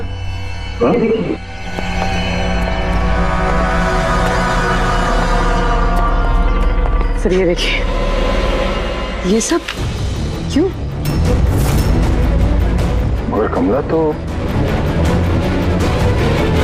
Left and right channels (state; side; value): identical; both; correlation 1.00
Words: सर ये देखिए, ये सब क्यों? मगर कमला तो,